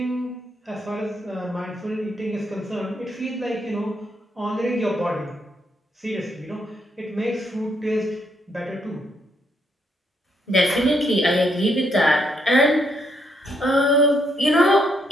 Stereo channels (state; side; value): normal; both; correlation 0.75